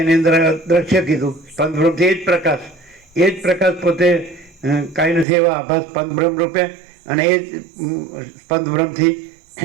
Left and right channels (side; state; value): left; drops out; at 5.2 s